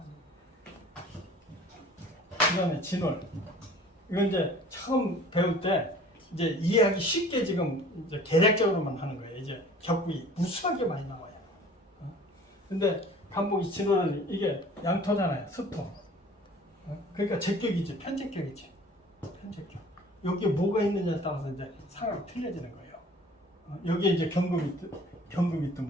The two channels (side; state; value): both; normal; correlation 0.48